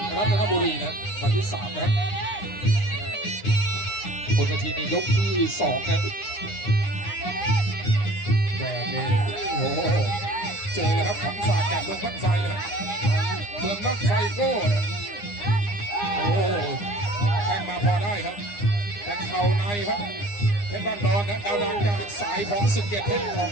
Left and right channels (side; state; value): right; late; 9.8 ms